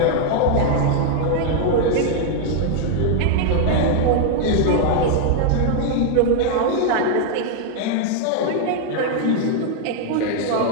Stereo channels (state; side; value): different; both; correlation 0.00